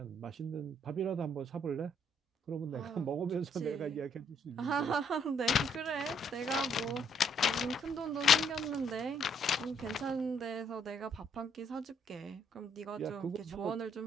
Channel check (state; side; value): normal; both; correlation 0.68